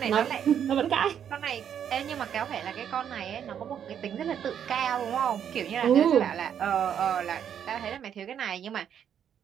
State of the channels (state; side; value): quieter; left; 8.8 dB